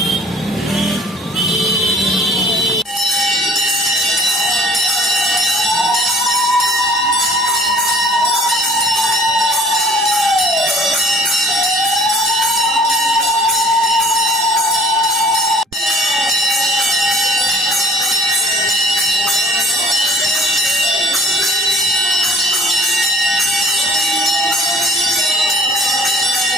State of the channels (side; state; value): both; normal; correlation 0.52